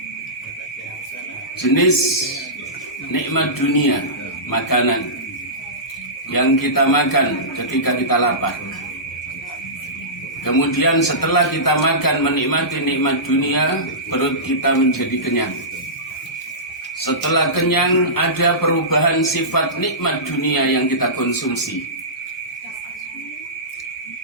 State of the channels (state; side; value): normal; both; correlation -0.20